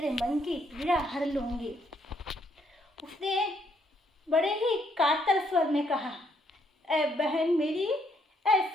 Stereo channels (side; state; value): both; normal; correlation 0.72